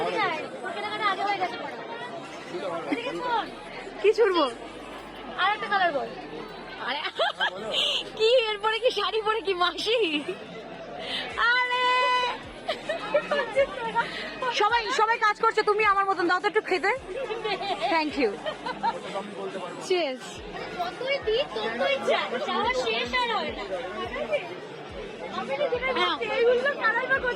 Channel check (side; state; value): both; identical; correlation 1.00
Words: কি ছুড়বো। আর একটা কালার বল। আরে কি এরপরে কি শাড়ি পরে কি মাসি? আরে সবাই সবাই কাজ করছে, তুমি আমার মতন দাও তো একটু খেতে। Thank you. চিয়ার্স।